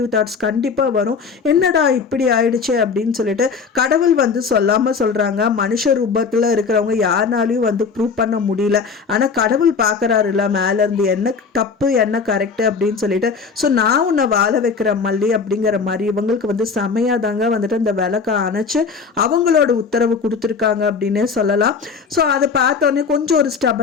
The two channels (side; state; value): right; quieter; 5.3 dB